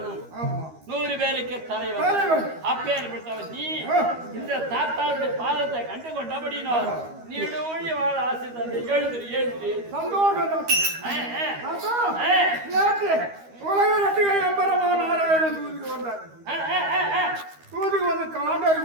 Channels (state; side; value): late; left; 13 ms